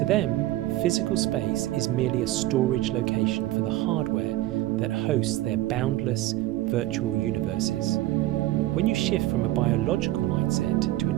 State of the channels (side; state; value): left; quieter; 16.0 dB